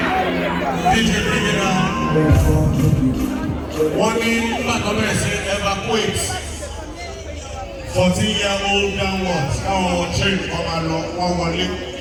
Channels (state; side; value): identical; both; correlation 1.00